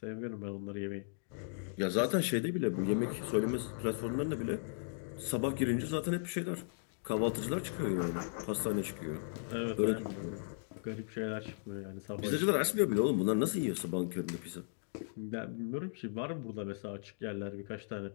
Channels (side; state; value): right; silent; digital silence